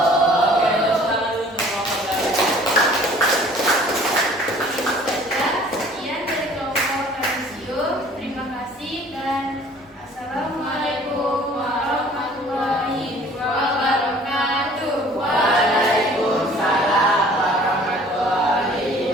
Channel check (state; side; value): normal; both; correlation 0.52